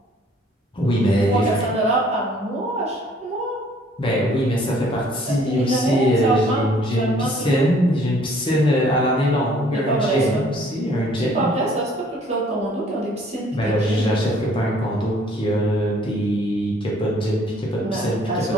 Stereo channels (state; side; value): normal; both; correlation 0.59